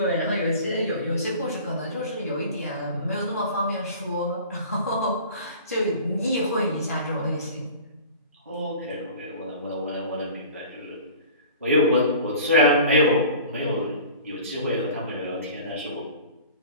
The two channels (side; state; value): both; inverted; correlation -0.42